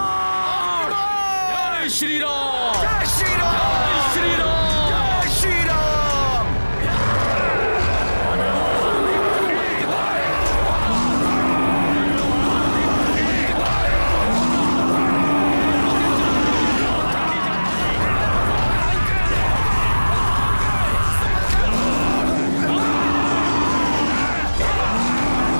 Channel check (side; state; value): both; inverted; correlation -1.00